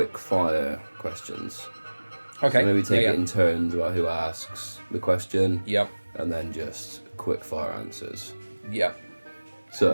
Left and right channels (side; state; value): both; inverted; correlation -1.00